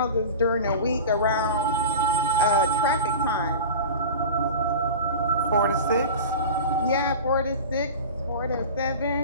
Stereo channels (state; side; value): inverted; both; correlation -0.33